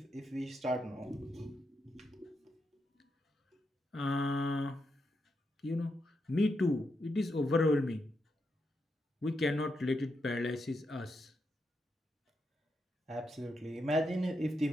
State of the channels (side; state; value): both; normal; correlation 0.83